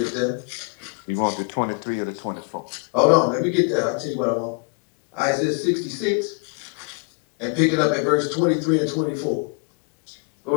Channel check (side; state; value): right; quieter; 34.1 dB